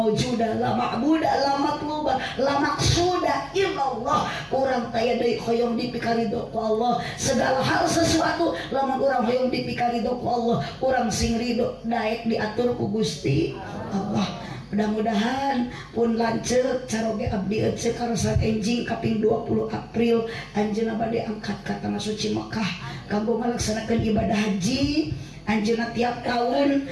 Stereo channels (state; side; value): identical; both; correlation 1.00